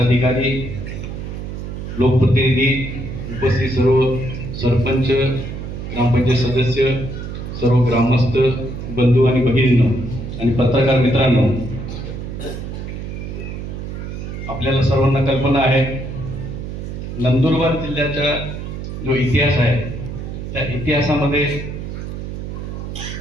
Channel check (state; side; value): noise; right; hum, 7 dB below the sound